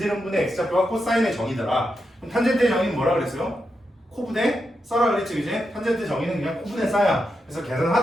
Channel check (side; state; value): both; normal; correlation 0.86